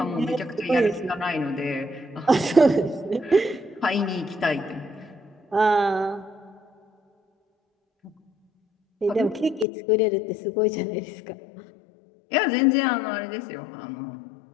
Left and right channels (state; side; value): drops out; right; at 9.7 s